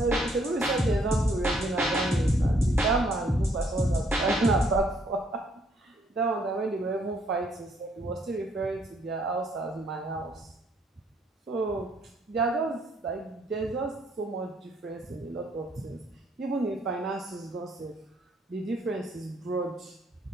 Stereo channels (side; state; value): both; normal; correlation 0.68